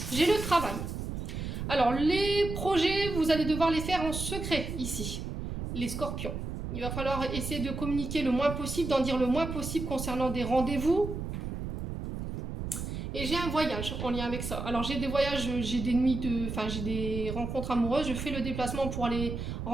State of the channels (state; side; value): noise; right; rumble, 5 dB below the sound